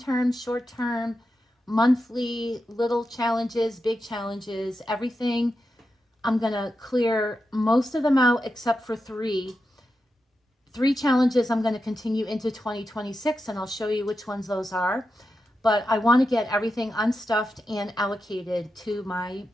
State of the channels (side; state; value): both; normal; correlation 0.89